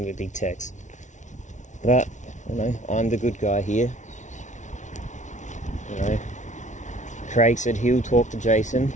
him a big text. But, you know, I'm the good guy here. You know, Craig said he'll talk to Jason,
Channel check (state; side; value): late; right; 0.36 ms